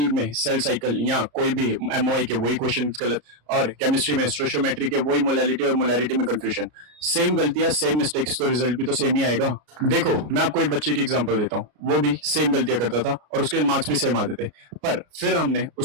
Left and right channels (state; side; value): late; left; 33 ms